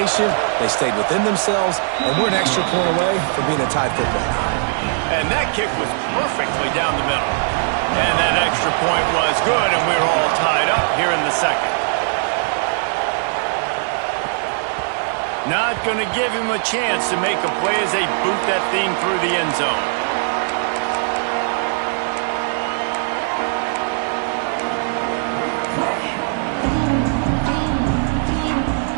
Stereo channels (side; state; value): left; silent; 66 dB below the other